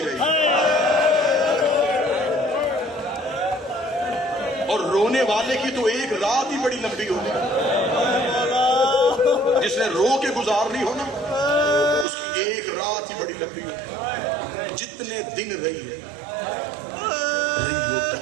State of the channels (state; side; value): drops out; left; at 12.1 s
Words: رہی۔ اور رونے والے کی تو ایک رات ہی بڑی لمبی ہوتی ہے. جس نے رو کے گزارنی ہو نا اس کی ایک رات ہی بڑی لمبی ہوتی ہے. جتنے دن رہی ہے